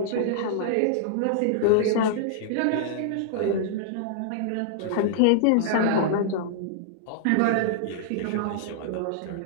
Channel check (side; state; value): both; different; correlation -0.01